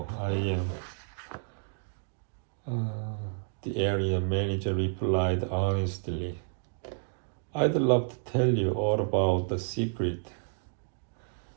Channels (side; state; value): left; silent; 56 dB below the other